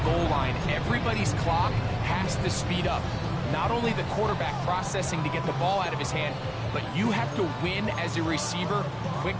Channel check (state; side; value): identical; both; correlation 1.00